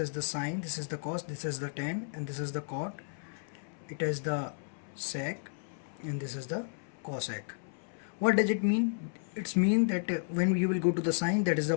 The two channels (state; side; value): silent; right; 56 dB below the other